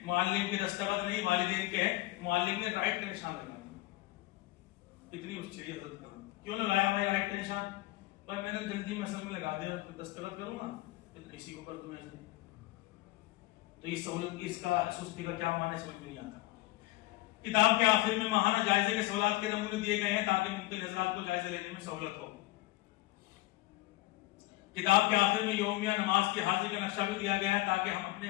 معلم کے دستخط نہیں والدین کے ہیں، معلم نے رائٹ کا نشان لگا دیا، اتنی اس چاہیے حضرت کا کیوں لگایا بھائی رائٹ کا نشان؟ پر میں نے جلدی میں اصل میں لگا دیا اور دستخط کروں گا اسی کو کر دوں ایسے، تو یہ سہولت اس کا سستی کا کیا معنی سمجھ میں نہیں آتا۔ کتاب کے آخر میں ماہانہ جائزے کے سوالات کے نمونے دیے گئے ہیں تاکہ ممکن حضرات کو جائزہ لینے میں سہولت ہو۔ کتاب کے آخر میں یومیہ نماز کی حاضری کا نقشہ بھی دیا گیا ہے تاکہ ہم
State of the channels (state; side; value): quieter; right; 19.1 dB